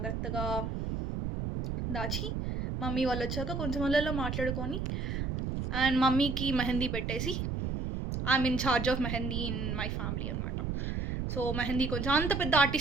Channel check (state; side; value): noise; right; rumble, 2 dB below the sound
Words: దాచి మమ్మీ వాళ్ళు వచ్చాక కొంచెం వాళ్ళలో మాట్లాడుకొని అండ్ మమ్మీకి మెహందీ పెట్టేసి I'm in charge of mehndi in my family అనమాట. సో మెహందీ కొంచెం అంత పెద్ద